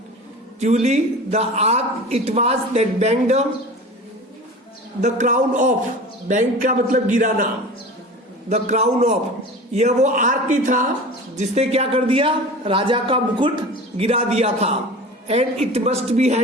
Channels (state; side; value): normal; both; correlation 0.36